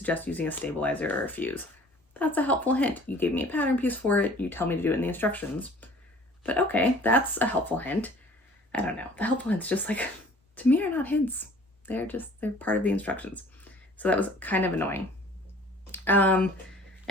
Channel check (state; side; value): normal; both; correlation 0.50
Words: using a stabilizer or a fuse. That's a helpful hint. You gave me a pattern piece for it. You tell me to do it in the instructions. But okay, that's a helpful hint. I don't know. The helpful hints just like, to me, are not hints. They're part of the instructions. So that was kind of annoying. And